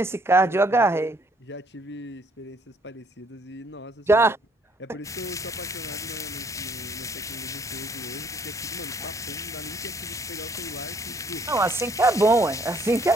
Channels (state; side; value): normal; both; correlation 0.65